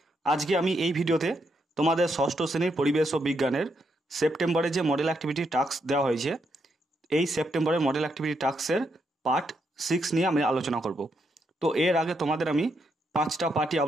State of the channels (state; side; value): normal; both; correlation 0.79